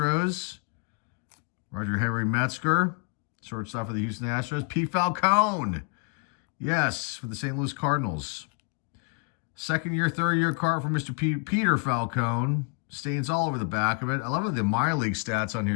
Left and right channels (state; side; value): quieter; right; 34.1 dB